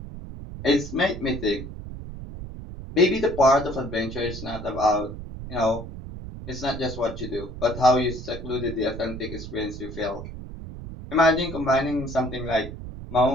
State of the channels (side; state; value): right; noise; rumble, 10 dB below the sound